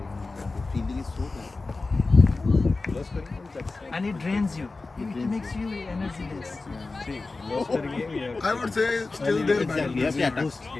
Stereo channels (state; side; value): quieter; right; 3.6 dB